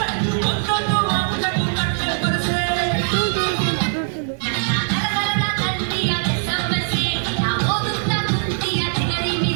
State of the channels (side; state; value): left; silent; 65 dB below the other